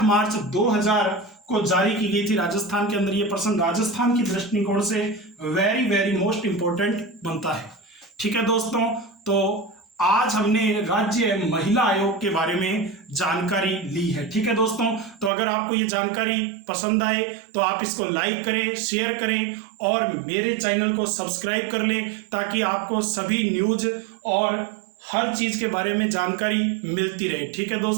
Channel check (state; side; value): drops out; left; at 15.3 s